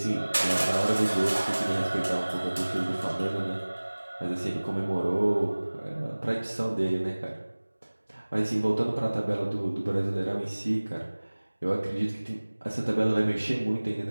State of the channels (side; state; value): both; inverted; correlation -1.00